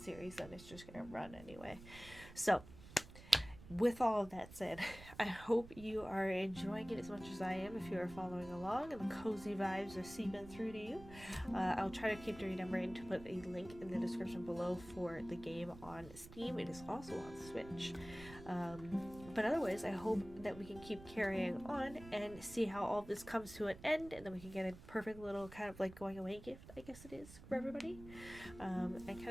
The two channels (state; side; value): noise; right; rumble, 17 dB below the sound